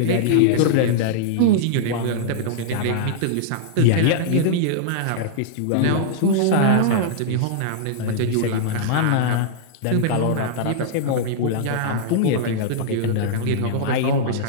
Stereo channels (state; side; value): different; both; correlation -0.02